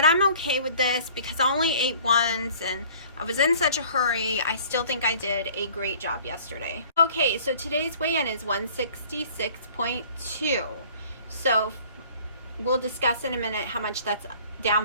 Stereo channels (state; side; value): inverted; both; correlation -0.51